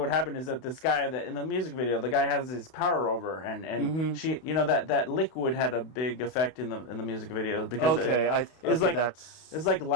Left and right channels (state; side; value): late; right; 32 ms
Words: happened is that this guy that in the music video, the guy has his power over, and she, that liquid had a big effect in the music video because it's like